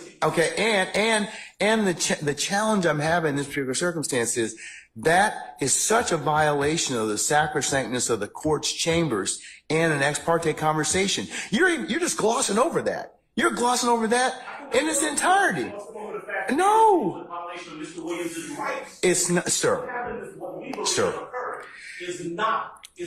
Okay. And the challenge I'm having in this particular circumstance is that is such a violation of the sacrosanctness of the court's chambers and an ex parte conversation. You're just glossing over that. You're glossing over that in its entirety. No. It's not, sir. Sir.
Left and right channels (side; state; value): both; identical; correlation 1.00